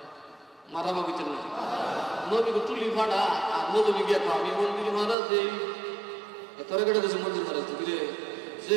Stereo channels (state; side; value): drops out; left; at 5.2 s